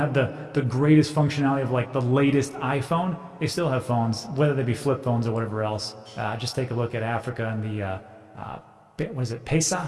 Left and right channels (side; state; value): both; identical; correlation 1.00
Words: the greatest functionality of like the latest iPhone, they still have phones, whether they be flip phones or whatever else. Just take a look at Africa and the, what is it, Pesa?